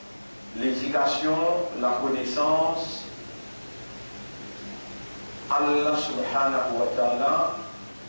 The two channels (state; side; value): inverted; both; correlation -1.00